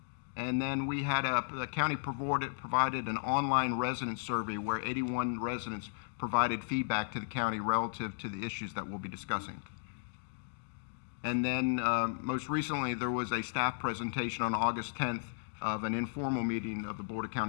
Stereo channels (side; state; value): right; silent; digital silence